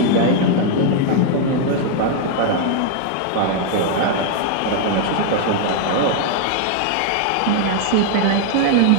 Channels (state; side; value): different; both; correlation 0.00